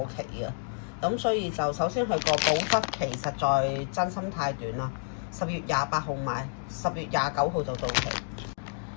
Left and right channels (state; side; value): silent; right; digital silence